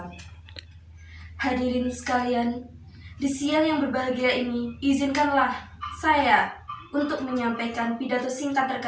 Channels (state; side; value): identical; both; correlation 1.00